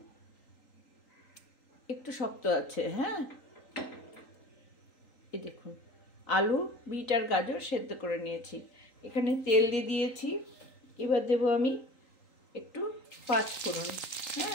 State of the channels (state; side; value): late; right; 3.8 ms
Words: একটু শক্ত আছে। হ্যাঁ, এই দেখুন আলু, বিট আর গাজর সেদ্ধ করে নিয়েছি। এখানে তেল দিয়ে দিয়েছি। এবার দেবো আমি একটু পাঁচফোড়ন।